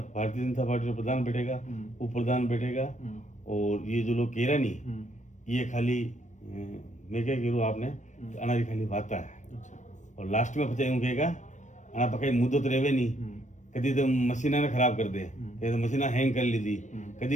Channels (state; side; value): late; right; 0.35 ms